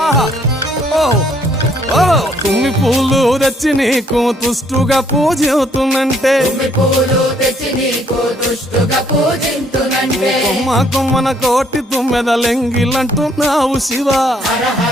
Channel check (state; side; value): normal; both; correlation 0.66